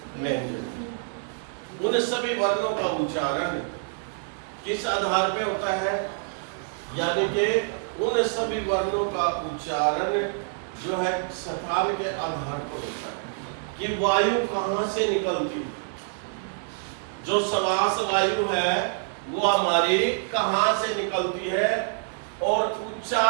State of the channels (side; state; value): left; silent; digital silence